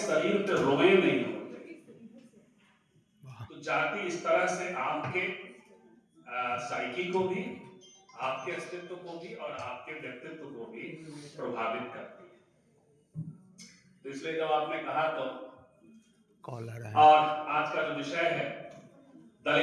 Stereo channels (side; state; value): both; identical; correlation 1.00